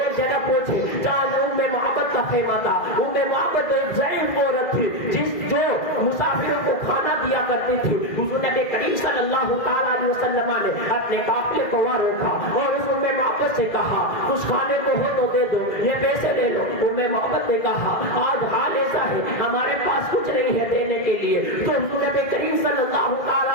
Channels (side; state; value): right; late; 2.0 ms